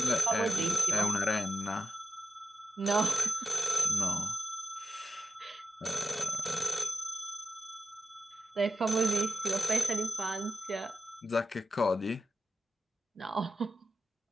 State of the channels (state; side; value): normal; both; correlation 0.93